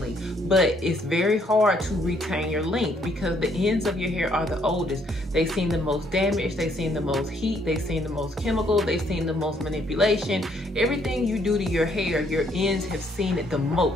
but it's very hard to retain your length because the ends of your hair are the oldest. They've seen the most damage, they've seen the most heat, they've seen the most chemical, they've seen the most manipulation. Everything you do to your hair, your ends have seen it the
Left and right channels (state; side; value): normal; both; correlation 0.68